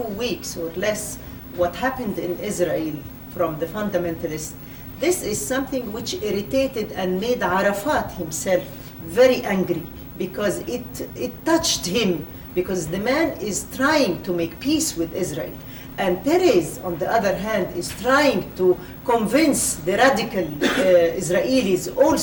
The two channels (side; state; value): both; identical; correlation 1.00